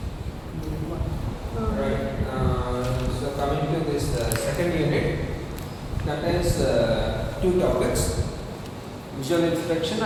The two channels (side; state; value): both; identical; correlation 1.00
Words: Right. So coming to this second unit, that is two topics: visual inspection